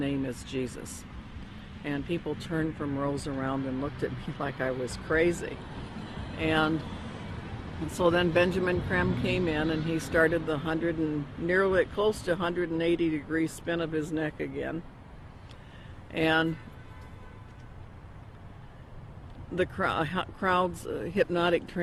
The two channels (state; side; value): identical; both; correlation 1.00